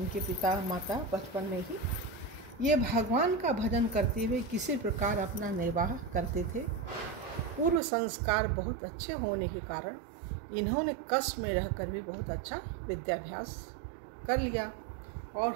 पिता माता बचपन में ही। ये भगवान का भजन करते हुए किसी प्रकार अपना निर्वाह करते थे। पूर्व संस्कार बहुत अच्छे होने के कारण इन्होंने कष्ट में रहकर भी बहुत अच्छा विद्याभ्यास कर लिया और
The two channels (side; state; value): left; drops out; at 7.8 s